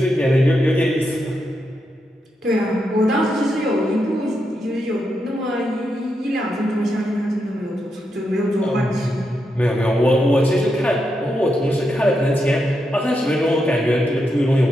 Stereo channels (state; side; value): normal; both; correlation 0.84